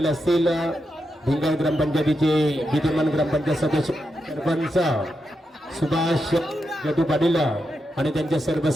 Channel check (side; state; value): both; normal; correlation 0.85